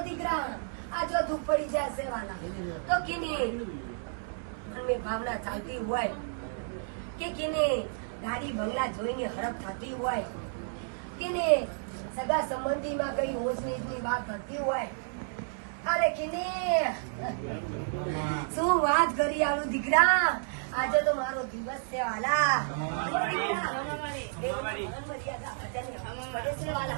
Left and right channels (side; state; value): left; silent; digital silence